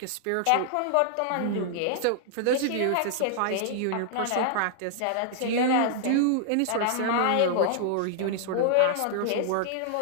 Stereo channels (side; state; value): both; different; correlation -0.01